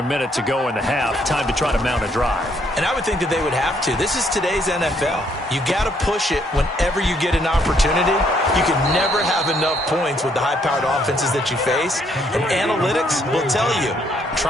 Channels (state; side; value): normal; both; correlation 0.69